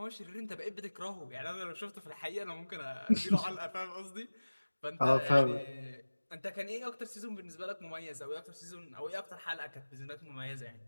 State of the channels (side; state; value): both; inverted; correlation -1.00